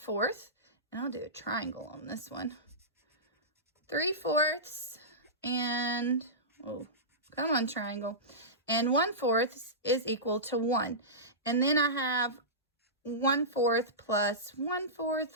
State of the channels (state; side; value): normal; both; correlation -0.18